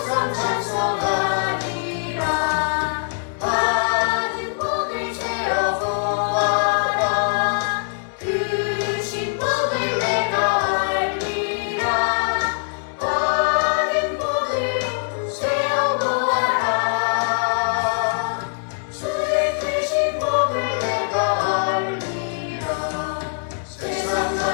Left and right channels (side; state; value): right; silent; digital silence